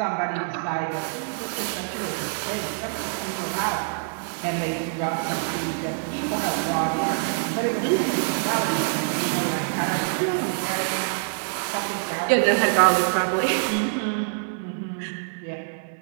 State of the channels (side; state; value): left; silent; 59 dB below the other